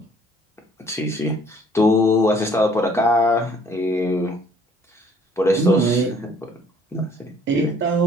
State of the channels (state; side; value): normal; both; correlation 0.59